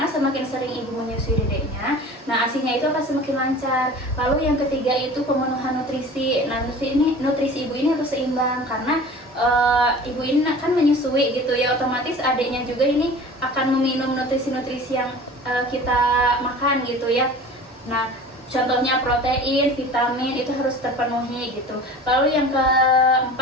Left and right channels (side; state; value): both; normal; correlation 0.41